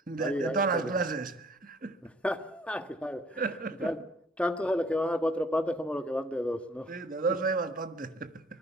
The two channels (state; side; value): normal; both; correlation 0.58